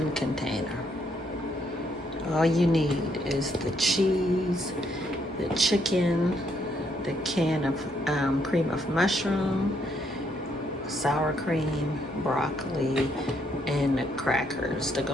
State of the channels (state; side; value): normal; both; correlation 0.73